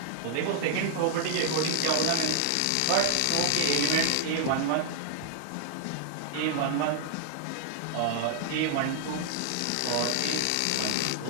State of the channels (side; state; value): both; different; correlation 0.00